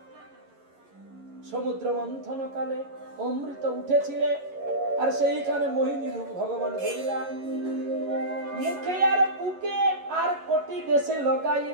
সমুদ্র মন্থন কালে অমৃত উঠেছিলে, আর সেইখানে মোহিনী রূপ ভগবান ধরিলা, মুখে আর বুকে আর কোটি দেশে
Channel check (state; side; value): late; left; 11 ms